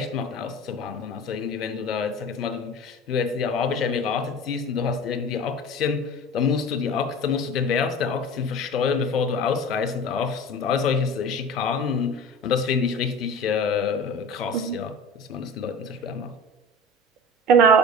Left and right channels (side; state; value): both; normal; correlation 0.36